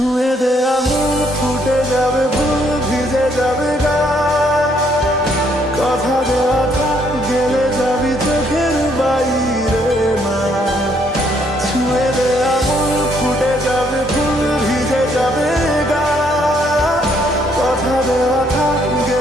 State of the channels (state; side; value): normal; both; correlation 0.69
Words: দে আঙুল ফুটে যাবে ফুল ভিজে যাবে গা কথা দেওয়া থাক গেলে যাবি চোখের বাইরে মা ছুঁয়ে দে আঙুল ফুটে যাবে ফুল ভিজে যাবে গা কথা দেওয়া থাক